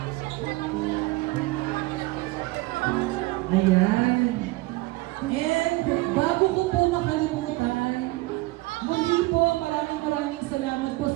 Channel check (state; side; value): quieter; left; 21.3 dB